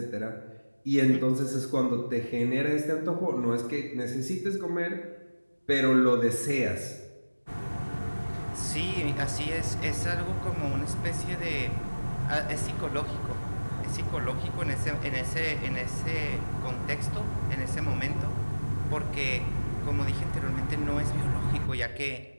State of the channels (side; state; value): both; inverted; correlation -1.00